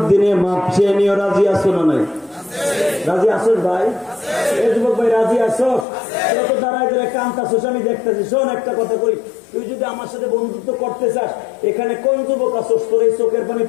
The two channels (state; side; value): drops out; right; at 5.9 s